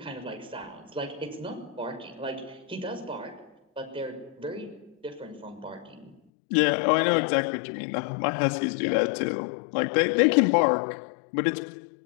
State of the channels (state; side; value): drops out; right; at 6.2 s